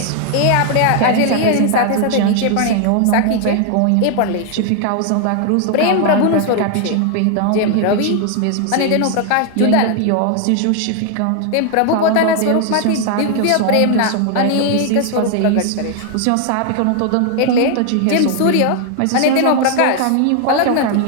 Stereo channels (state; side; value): different; both; correlation 0.00